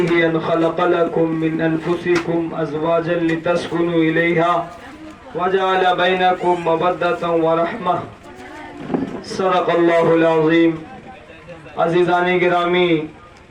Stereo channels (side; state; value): both; identical; correlation 1.00